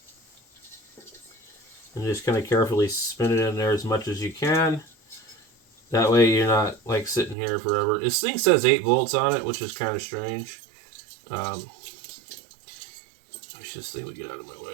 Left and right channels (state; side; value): drops out; left; at 7.4 s